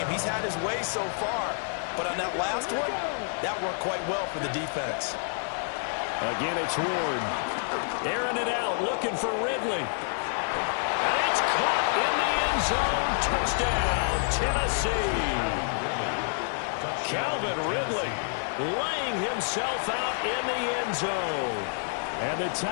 He's had his way so far, but on that last one, that worked quite well for the defense. Again, it's Ward. Airing it out, looking for Ridley. And it's caught in the end zone. Touchdown, Tennessee. Calvin Ridley laying himself out in the end zone. And the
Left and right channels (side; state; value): right; silent; digital silence